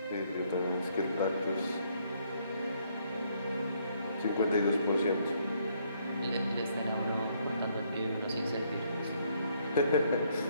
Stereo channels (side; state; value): both; inverted; correlation -0.69